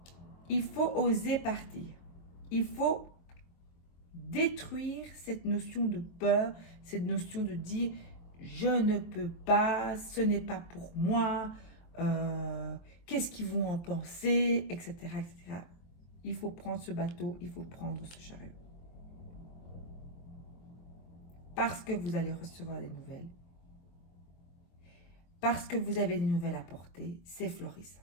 Il faut oser partir. Il faut détruire cette notion de peur, cette notion de dire je ne peux pas, ce n'est pas pour moi, qu'est-ce qu'ils vont en penser, etc., etc. Il faut prendre ce bateau, il faut prendre ce chariot. Parce que vous allez recevoir des nouvelles. Parce que vous avez des nouvelles à porter, c'est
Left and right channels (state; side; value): late; right; 23 ms